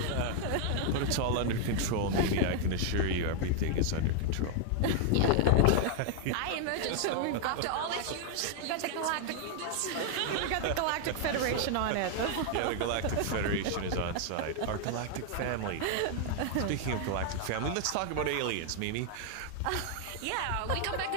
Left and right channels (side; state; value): both; different; correlation 0.00